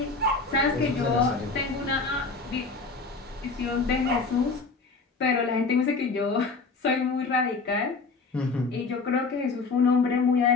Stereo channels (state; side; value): quieter; right; 4.2 dB